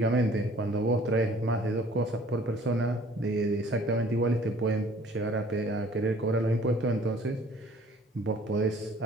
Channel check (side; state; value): both; normal; correlation 0.54